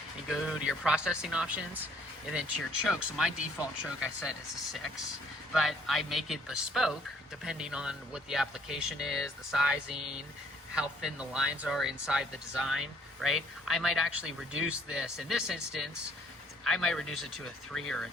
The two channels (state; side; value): normal; both; correlation 0.61